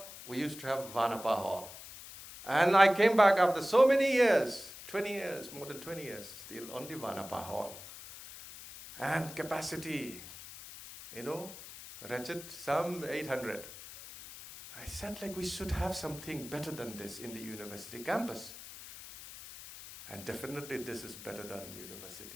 we used to have Vanapa Hall. And I came back after so many years, 20 years, more than 20 years, still only Vanapa Hall. And capacity, you know, wretched, some 800. I said, like, we should have something better than this in the university campus. And definitely this is better than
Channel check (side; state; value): left; noise; hiss, 14 dB below the sound